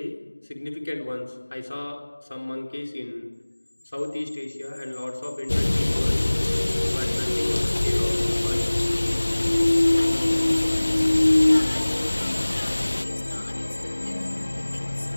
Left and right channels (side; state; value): both; inverted; correlation -1.00